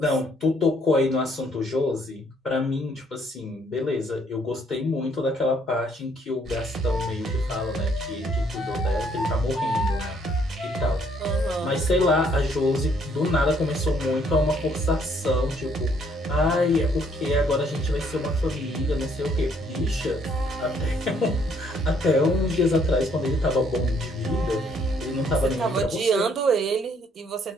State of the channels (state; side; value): normal; both; correlation 0.66